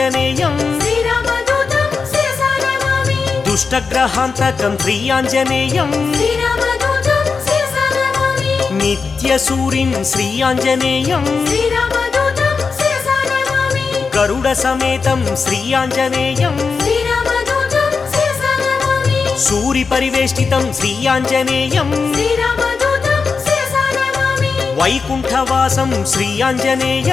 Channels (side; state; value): right; quieter; 5.0 dB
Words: శ్రీరామదూతం శిరసా నమామి దుష్టగ్రహాంతకం శ్రీ ఆంజనేయం శ్రీరామదూతం శిరసా నమామి నిత్యసూరిం శ్రీ ఆంజనేయం శ్రీరామదూతం శిరసా నమామి గరుడ సమేతం శ్రీ ఆంజనేయం శ్రీరామదూతం శిరసా నమామి సూరి పరివేష్టితం శ్రీ ఆంజనేయం శ్రీరామదూతం శిరసా నమామి వైకుంఠవాసం శ్రీ